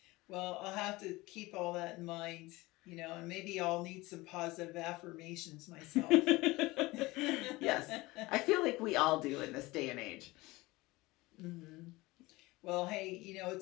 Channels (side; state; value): right; quieter; 21.0 dB